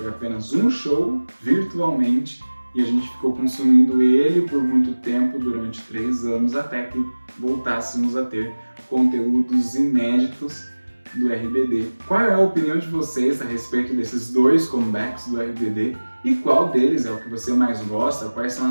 apenas um show virtualmente e a gente ficou consumindo ele por muito tempo, durante 3 anos, até que voltássemos a ter conteúdos inéditos do RBD. Qual é a opinião de vocês a respeito desses dois comebacks do RBD e qual deles é o que você mais gosta? Quais são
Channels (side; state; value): both; inverted; correlation -1.00